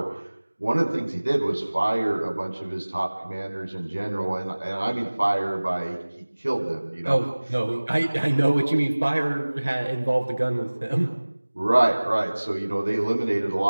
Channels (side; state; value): both; inverted; correlation -1.00